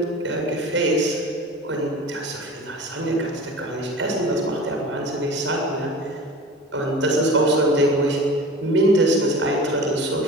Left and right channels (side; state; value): both; normal; correlation 0.37